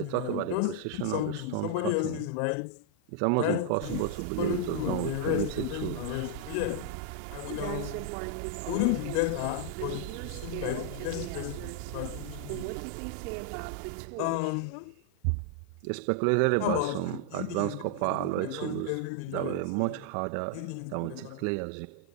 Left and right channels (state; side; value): different; both; correlation -0.01